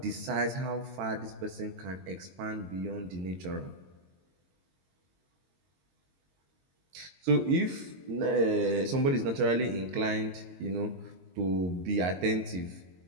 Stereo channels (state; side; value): late; left; 22 ms